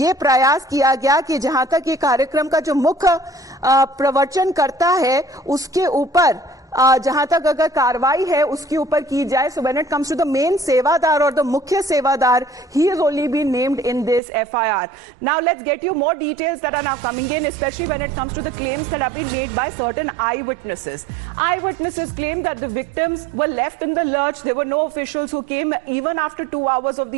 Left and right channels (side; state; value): left; drops out; at 14.2 s